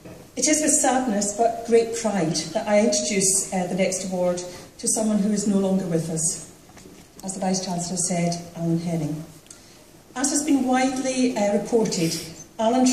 it is with sadness but great pride that I introduce the next award to someone who is no longer with us. As the Vice-Chancellor said, Adam Henning. As has been widely reported, Alan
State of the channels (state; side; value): identical; both; correlation 1.00